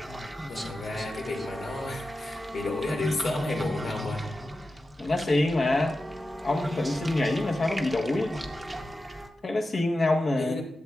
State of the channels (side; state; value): both; normal; correlation 0.92